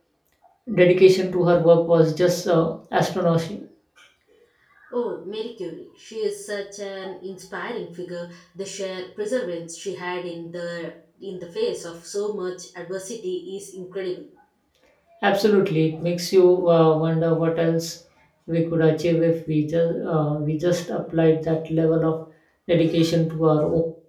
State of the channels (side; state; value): both; identical; correlation 1.00